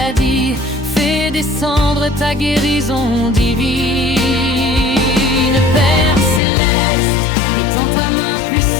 fais descendre ta guérison divine. Père céleste, étends ta main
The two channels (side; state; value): right; drops out; at 6.4 s